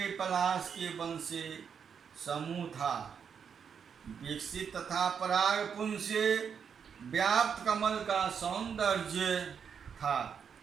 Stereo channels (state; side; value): quieter; left; 7.0 dB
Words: पलाश के वन से समूह था, विकसित तथा पराग पुंज से व्याप्त कमल का सौंदर्य था,